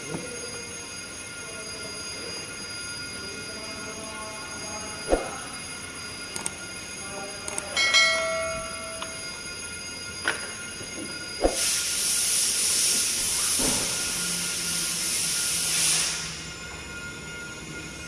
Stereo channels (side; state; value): both; identical; correlation 1.00